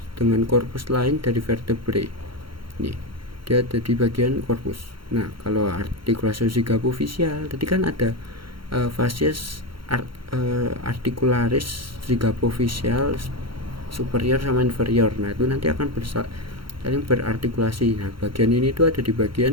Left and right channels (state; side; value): late; left; 0.73 ms